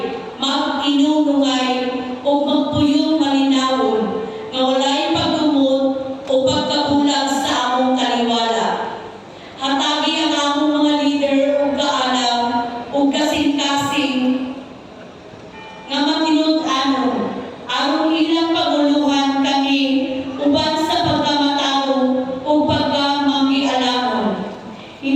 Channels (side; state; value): both; identical; correlation 1.00